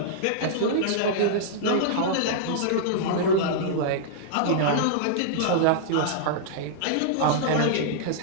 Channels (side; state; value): both; different; correlation -0.02